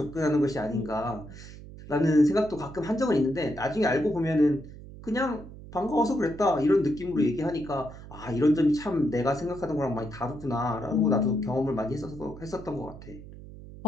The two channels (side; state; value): right; noise; hum, 15 dB below the sound